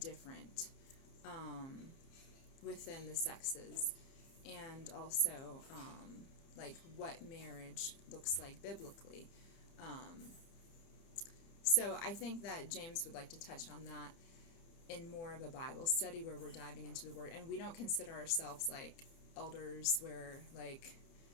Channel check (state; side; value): late; right; 30 ms